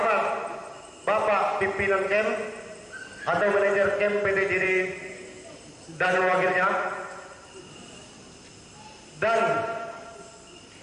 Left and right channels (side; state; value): both; identical; correlation 1.00